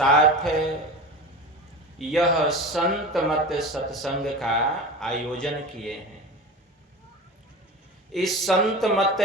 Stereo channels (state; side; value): normal; both; correlation 0.31